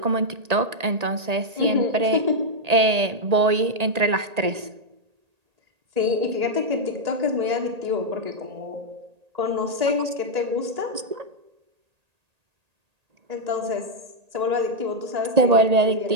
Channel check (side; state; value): left; late; 1.8 ms